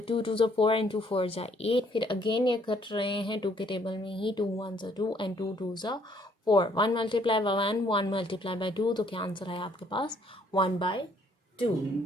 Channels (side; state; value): both; normal; correlation 0.65